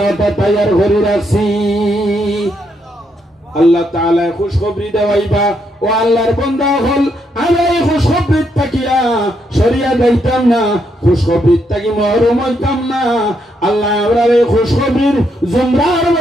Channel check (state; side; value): normal; both; correlation 0.77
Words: তৈয়ার করে রাখছি। আল্লাহ তাআলা খুশখবরি দেওয়াইবা ও আল্লাহর বান্দা হল। আমি এই খুশখবরির তাকিয়া সরিয়া যাইতাম না, খুশখবরির তাকি মহরুম হইতাম না। আল্লাহ আমরা এই খুশখবরির জুমরার